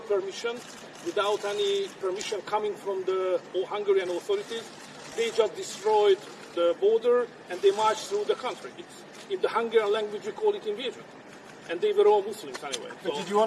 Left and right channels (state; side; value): identical; both; correlation 1.00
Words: without any permission coming from the Hungarian authorities, they just destroyed the border and they marched through the country. In the Hungarian language we call it invasion. And they were all Muslims anyway. But so did you